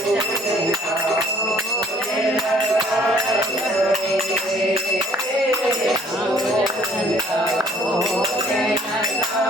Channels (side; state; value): both; normal; correlation 0.59